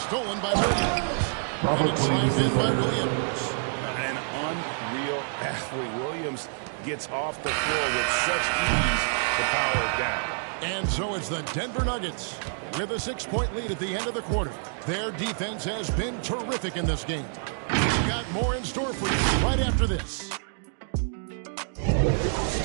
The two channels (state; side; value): silent; left; digital silence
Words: by Williams. And it's slammed in by Williams. An unreal athlete. Williams gets off the floor with such ease to power it down. And so it's the Denver Nuggets with a 6-point lead at the end of the quarter. Their defense has been terrific in this game. We've got more in store for you right after this.